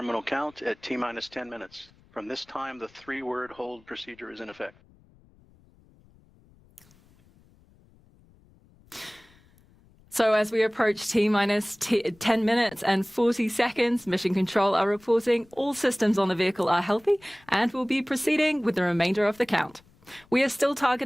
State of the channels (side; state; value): left; noise; rumble, 29 dB below the sound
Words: count at T-minus 10 minutes. From this time, the 3-word hold procedure is in effect. So as we approach T-minus 10 minutes and 40 seconds, Mission Control are reporting all systems on the vehicle are healthy and will be proceeding with the remainder of the count. We are still